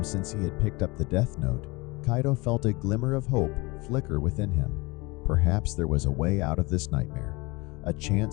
since he had picked up the Death Note, Kaito felt a glimmer of hope flicker within him. Perhaps there was a way out of this nightmare, a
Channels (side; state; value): right; quieter; 24.6 dB